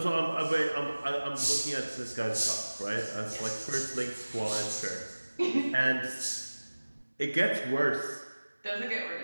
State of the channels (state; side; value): inverted; both; correlation -1.00